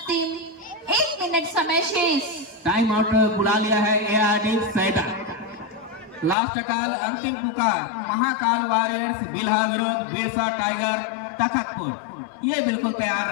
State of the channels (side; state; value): right; drops out; at 6.4 s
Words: 1 मिनट समय शेष। टाइम आउट बुला लिया है ARD फायदा। लास्ट काल अंतिम पुकार महाकाल वॉरियर्स बिल्हा विरोध बिरसा टाइगर तखतपुर, ये बिल्कुल तैयार